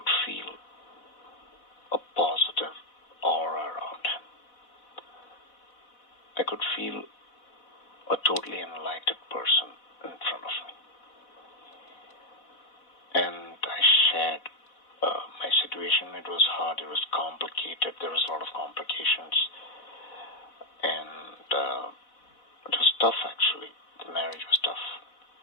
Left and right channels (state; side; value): late; right; 4.1 ms